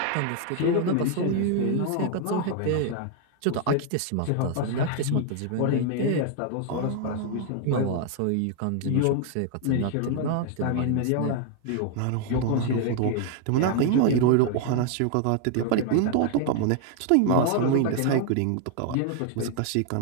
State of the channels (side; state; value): both; different; correlation 0.00